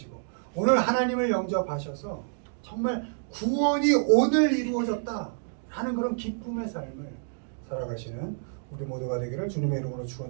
오늘 하나님을 영접하셔서 정말 구원이 오늘 이루어졌다 하는 그런 기쁨의 삶을 살아가시는 우리 모두가 되기를 주님의 이름으로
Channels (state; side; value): silent; left; digital silence